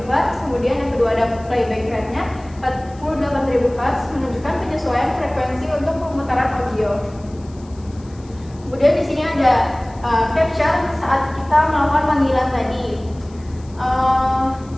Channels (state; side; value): noise; left; hiss, 27 dB below the sound